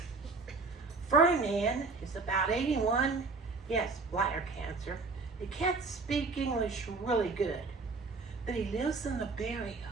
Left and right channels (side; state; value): left; quieter; 4.1 dB